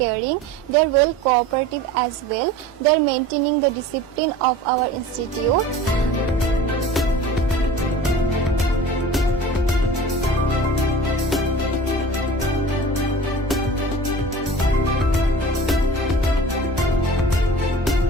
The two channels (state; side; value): normal; both; correlation 0.40